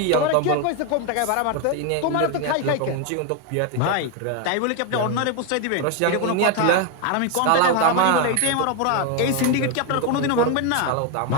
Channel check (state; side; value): different; both; correlation 0.01